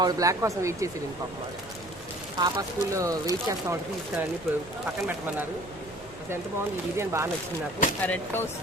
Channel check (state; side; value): noise; right; rumble, 20 dB below the sound